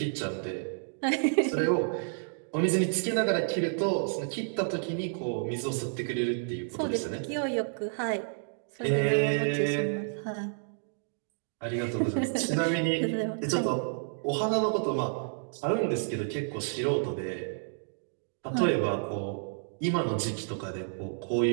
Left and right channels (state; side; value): silent; left; digital silence